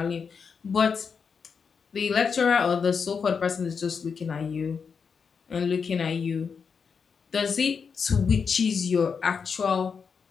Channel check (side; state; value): right; quieter; 5.9 dB